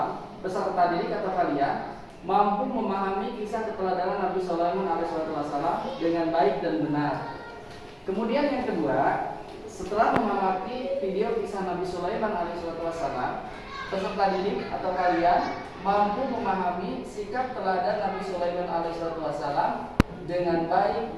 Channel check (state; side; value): identical; both; correlation 1.00